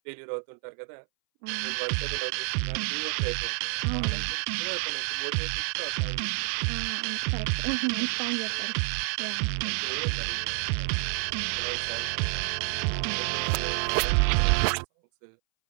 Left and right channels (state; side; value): silent; left; 59 dB below the other